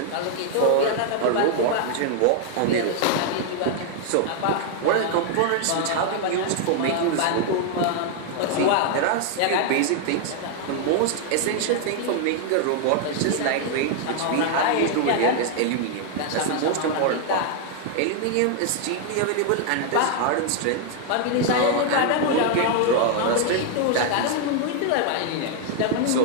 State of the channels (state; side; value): different; both; correlation 0.00